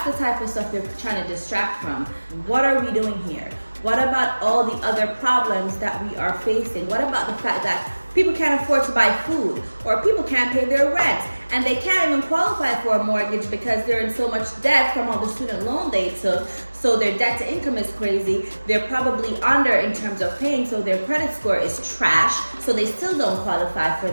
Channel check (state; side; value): inverted; both; correlation -1.00